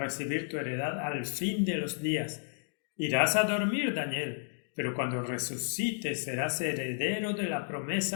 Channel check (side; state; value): right; silent; digital silence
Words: tu heredad al fin de los días. Irás a dormir, Daniel, pero cuando resucites serás heredero de la